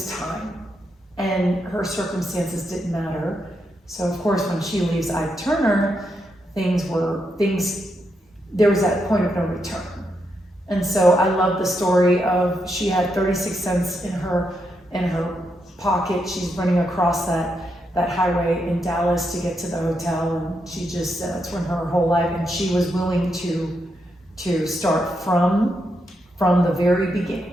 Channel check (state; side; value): normal; both; correlation 0.82